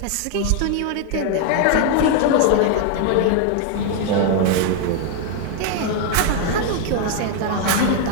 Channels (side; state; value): both; different; correlation 0.00